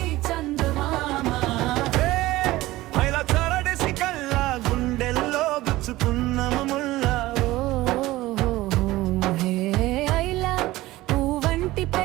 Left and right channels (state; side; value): quieter; left; 17.8 dB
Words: చందమామ. ఇలా చరడేసి కల్లా గుండెల్లో గుచ్చుకున్న ముల్లా. ఐలా పువ్వంటి